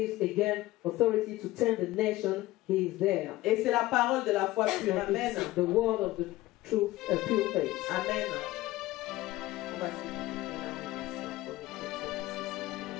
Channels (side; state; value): right; quieter; 17.5 dB